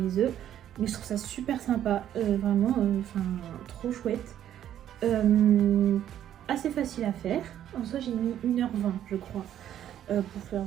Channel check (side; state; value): left; quieter; 10.9 dB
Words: œufs. Mais je trouve ça super sympa, vraiment, trop chouette. Assez facile à faire. En soi j'ai mis 1h20 je crois pour faire,